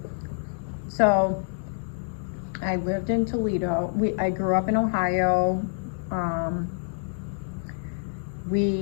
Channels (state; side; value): silent; right; digital silence